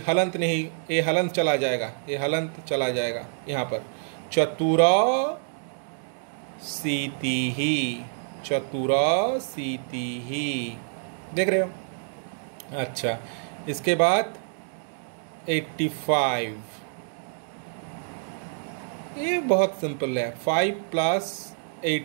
हलंत नहीं, ये हलंत चला जाएगा, ये हलंत चला जाएगा यहाँ पर, चतुरा सीति ही, चतुरा सीति ही। देख रहे हो। अच्छा इसके बाद 85, ये बहुत सिंपल है। 5 प्लस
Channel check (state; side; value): silent; left; digital silence